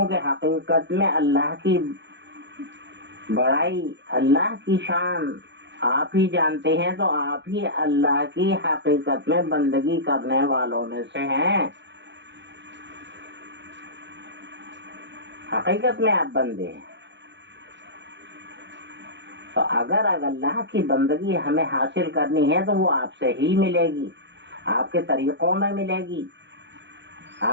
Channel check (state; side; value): late; left; 0.52 ms